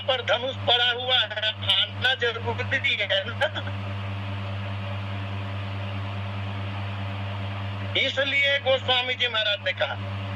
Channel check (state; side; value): identical; both; correlation 1.00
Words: पर धनुष पड़ा हुआ है आना जरूरी है ना। इसलिए गोस्वामी जी महाराज ने कहा,